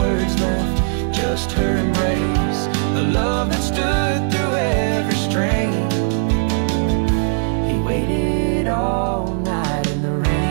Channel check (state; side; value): silent; left; 66 dB below the other